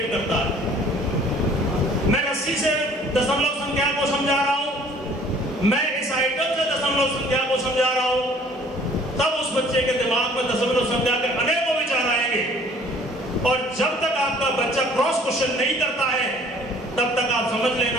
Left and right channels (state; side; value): normal; both; correlation 0.54